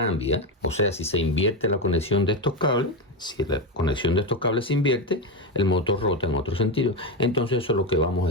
o sea si se invierte la conexión de estos cables, si la conexión de estos cables se invierte, el motor rota en otro sentido. Entonces eso es lo que vamos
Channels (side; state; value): both; normal; correlation 0.12